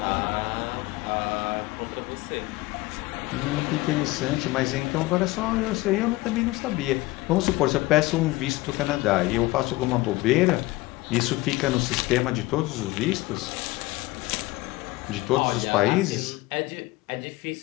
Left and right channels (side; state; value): right; quieter; 20.3 dB